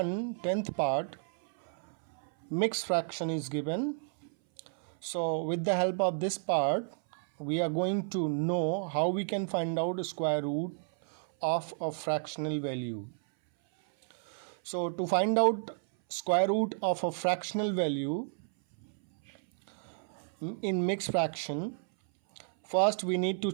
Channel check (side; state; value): left; silent; 57 dB below the other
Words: 10th part, mixed fraction is given. So with the help of this part, we are going to know how we can find out square root of a fractional value. So to find out square root of a fractional value in mixed fraction, first we need to